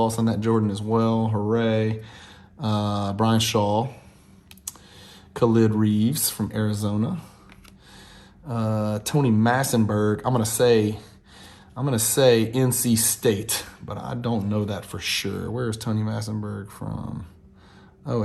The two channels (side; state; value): both; identical; correlation 1.00